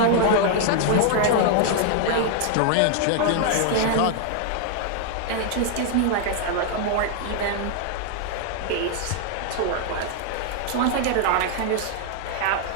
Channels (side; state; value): both; different; correlation 0.00